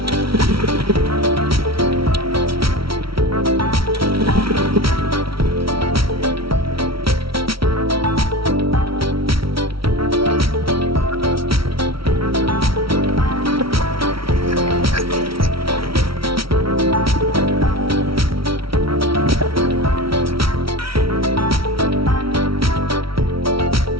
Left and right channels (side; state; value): left; late; 0.75 ms